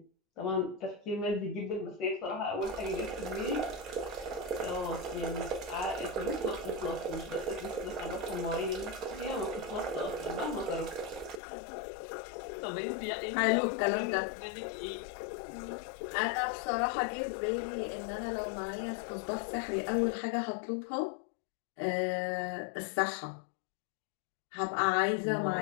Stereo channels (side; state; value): right; drops out; at 11.4 s